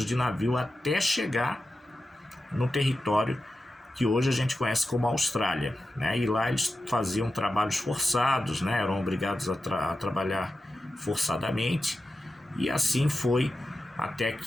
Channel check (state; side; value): normal; both; correlation 0.92